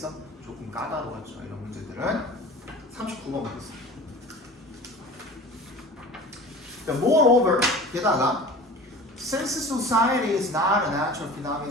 조금 까다로웠죠 이런 문제들은. 39번 보겠습니다. Moreover, 게다가 since society is not a natural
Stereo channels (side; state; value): both; normal; correlation 0.38